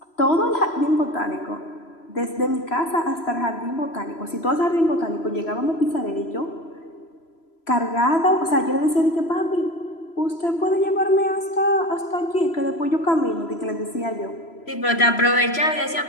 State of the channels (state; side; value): late; right; 3.0 ms